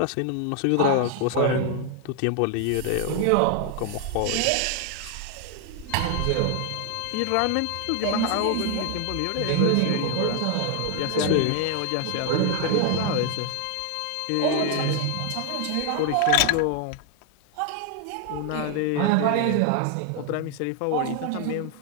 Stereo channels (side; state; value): both; different; correlation 0.00